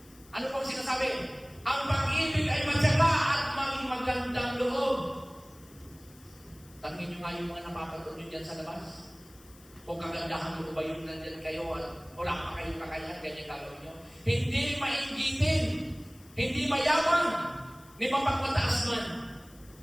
Ano pong sinasabi? Ang pag-ibig ay matyaga at maging magandang loob. Tangin nyo nga yung mga napapanood nyo dyan sa labas. Kung kagandahan mo ba yung nandyan kayo, wala pa kayong kakayahan, ganyan gagawin nyo. Hindi mainggitin, hindi mayabang, ni mapagmataas man.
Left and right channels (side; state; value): left; noise; hiss, 25 dB below the sound